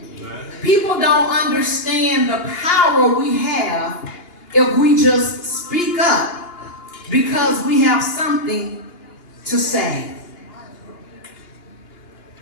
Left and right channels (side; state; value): right; late; 2.8 ms